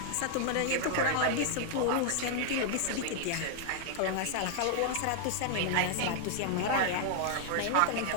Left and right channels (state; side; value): different; both; correlation 0.00